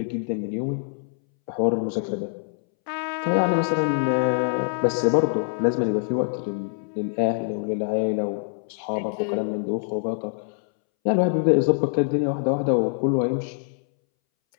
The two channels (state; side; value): silent; right; 62 dB below the other